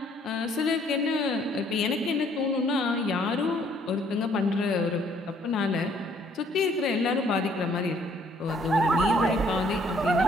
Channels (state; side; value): normal; both; correlation 0.63